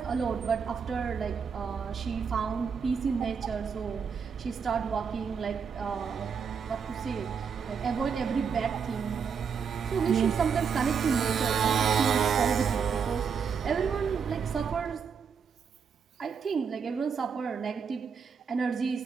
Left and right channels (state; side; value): quieter; left; 6.4 dB